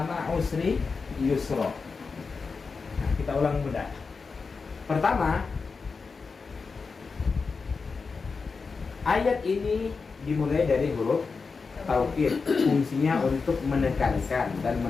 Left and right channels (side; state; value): right; quieter; 4.7 dB